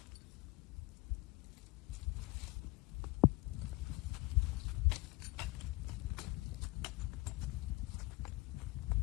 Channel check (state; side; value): quieter; right; 23.1 dB